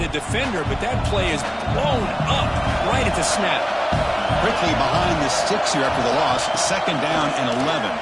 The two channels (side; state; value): both; identical; correlation 1.00